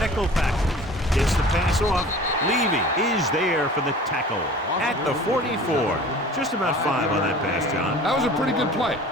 package. Gets the pass off. Levy is there for the tackle at the 44. Just about 5 on that pass, John. That was a pretty good play.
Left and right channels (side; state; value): both; normal; correlation 0.43